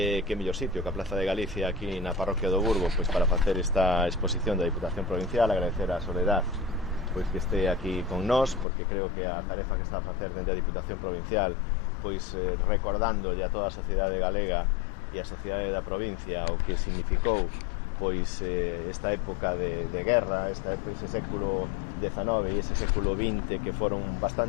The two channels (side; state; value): right; drops out; at 8.7 s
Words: mellor sitio que a Plaza de Galicia aquí na parroquia do Burgo pois para facer esta exposición da Diputación Provincial. Agradecer a Soledad pois que este aquí con nós, porque creo que a tarefa que está a facer dende a Diputación Provincial pois recordándolle a toda a sociedade galega e a sociedade da provincia o que significou pois esta época de guerra, ese século XIX e ese século XX que foron